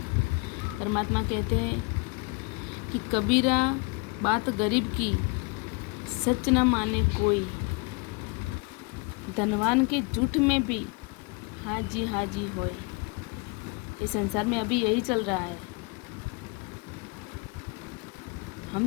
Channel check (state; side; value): quieter; right; 29.3 dB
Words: परमात्मा कहते हैं कि कबीरा बात गरीब की सच न माने कोई, धनवान के झूठ में भी हाँ जी होए। इस संसार में अभी यही चल रहा है।